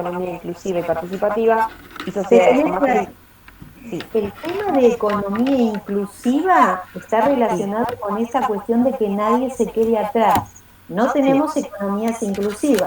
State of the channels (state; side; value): identical; both; correlation 1.00